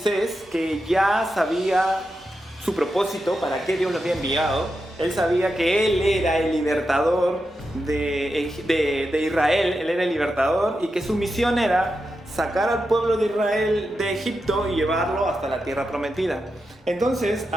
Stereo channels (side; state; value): both; normal; correlation 0.88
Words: que ya sabía su propósito, para qué Dios lo había enviado. Él sabía que él era el libertador de Israel, él era el libertador y que su misión era sacar al pueblo de Israel de Egipto y llevarlo hasta la tierra prometida. Entonces,